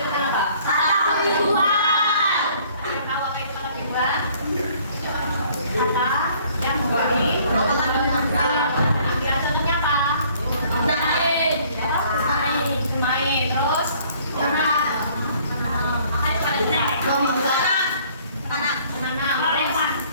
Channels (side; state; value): both; inverted; correlation -0.58